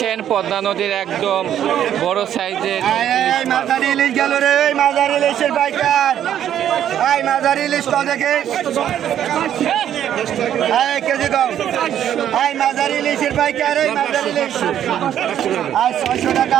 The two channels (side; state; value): left; quieter; 10.4 dB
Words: পদ্মা নদীর একদম বড় সাইজের মাঝারি ইলিশ গেল রে, মাঝারি ইলিশের পাইকার। মাঝারি ইলিশ তো দেখে কেজি কম। মাঝারি ইলিশের পাইকার, মাঝারি ইলিশ 600